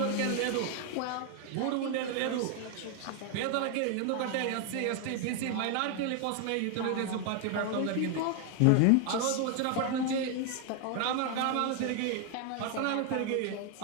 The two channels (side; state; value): both; different; correlation 0.01